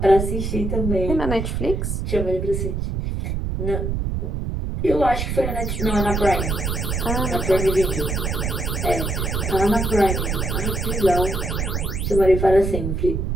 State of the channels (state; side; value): noise; right; rumble, 1 dB below the sound